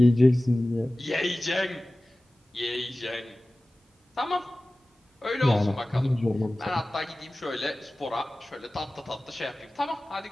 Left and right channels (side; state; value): both; normal; correlation 0.97